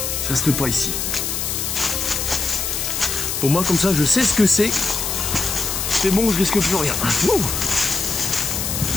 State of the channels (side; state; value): left; noise; hiss, 2 dB below the sound